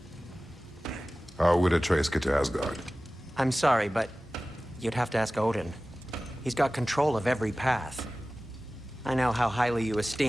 How would Atreus get to Asgard? I'm sorry, but you'd have to ask Odin. He's got control of every path. I know how highly you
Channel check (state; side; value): normal; both; correlation 0.97